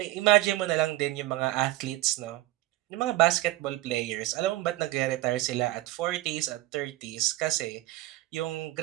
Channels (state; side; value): quieter; left; 17.2 dB